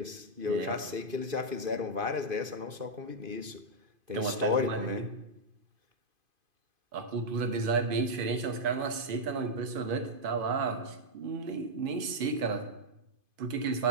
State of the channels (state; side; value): late; left; 2.5 ms